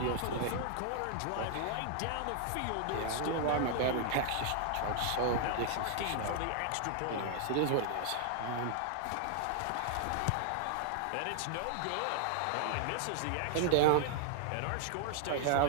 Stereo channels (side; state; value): both; different; correlation 0.00